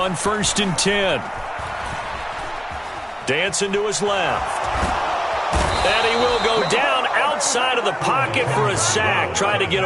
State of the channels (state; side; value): identical; both; correlation 1.00